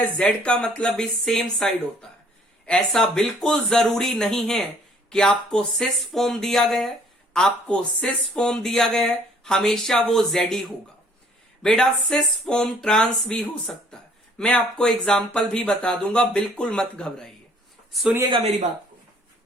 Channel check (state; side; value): normal; both; correlation 0.59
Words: जेड का मतलब भी सेम साइड होता है। ऐसा बिल्कुल जरूरी नहीं है कि आपको सिस फॉर्म दिया गया है, आपको सिस फॉर्म दिया गया है हमेशा वो जेड ही होगा। बेटा सिस फॉर्म ट्रांस भी हो सकता है, मैं आपको एग्जाम्पल भी बता दूंगा, बिल्कुल मत घबराइए। सुनिएगा मेरी बात को,